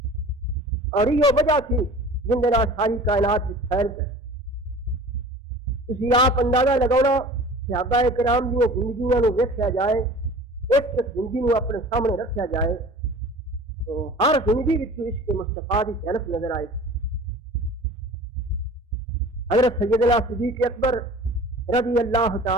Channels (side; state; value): both; normal; correlation 0.42